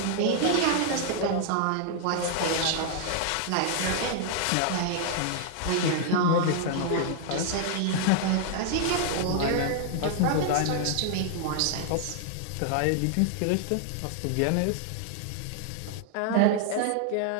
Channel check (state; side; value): different; both; correlation 0.00